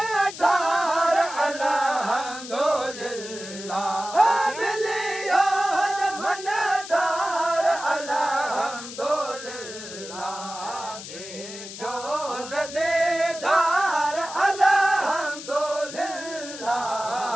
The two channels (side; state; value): left; noise; hiss, 12 dB below the sound